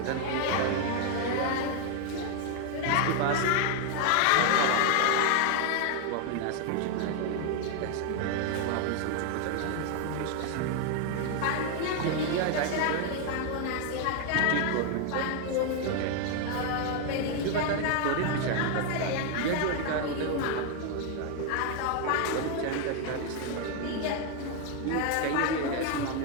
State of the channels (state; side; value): different; both; correlation 0.01